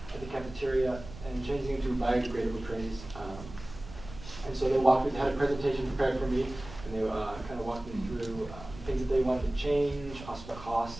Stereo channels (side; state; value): right; noise; rumble, 15 dB below the sound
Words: at the cafeteria, and changing them to biodegradable trays. And so they had a presentation prepared for me, and they kind of walked me through things that they wanted to change, possible